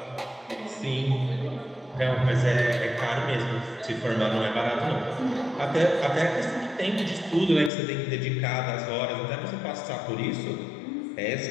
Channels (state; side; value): drops out; right; at 7.7 s